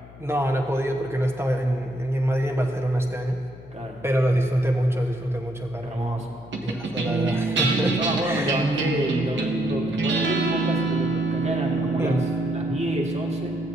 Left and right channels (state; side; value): noise; left; hum, 20 dB below the sound